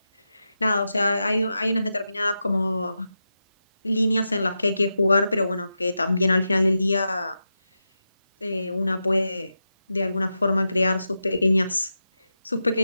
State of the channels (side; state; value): both; inverted; correlation -0.89